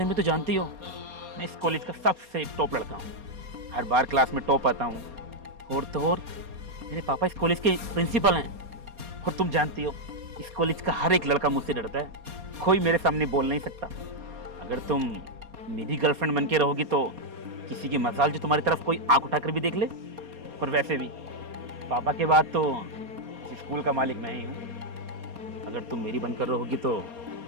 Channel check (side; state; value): left; late; 4.2 ms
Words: में तो जानती हो, मैं इस कॉलेज का सबसे टॉप लड़का हूँ। हर बार क्लास में टॉप आता हूँ। और तो और मेरे पापा इस कॉलेज के प्रिंसिपल हैं। और तुम जानती हो, इस कॉलेज का हर एक लड़का मुझसे डरता है। कोई मेरे सामने बोल नहीं सकता। अगर तुम मेरी गर्लफ्रेंड बन के रहोगी तो किसी की मजाल जो तुम्हारी तरफ कोई आंख उठाकर भी देख ले। और वैसे भी पापा के बाद तो इस स्कूल का मालिक मैं ही हूँ। अगर तुम मेरी बनकर रहोगी तो